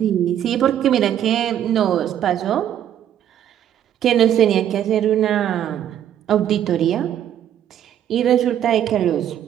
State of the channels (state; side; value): quieter; left; 10.5 dB